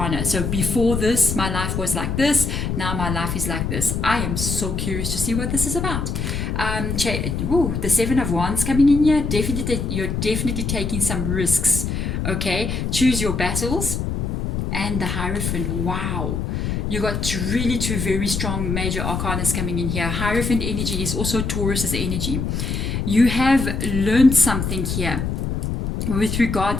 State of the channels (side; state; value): left; noise; rumble, 2 dB below the sound